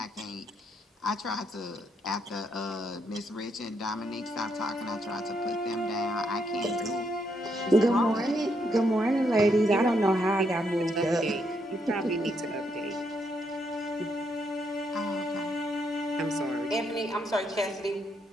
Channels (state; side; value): normal; both; correlation 0.77